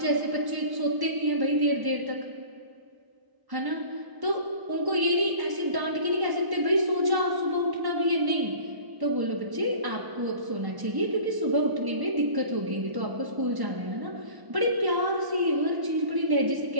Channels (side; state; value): left; late; 1.1 ms